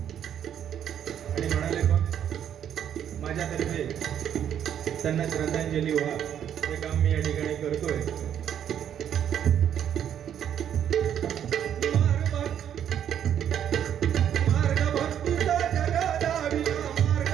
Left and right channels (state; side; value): quieter; left; 9.6 dB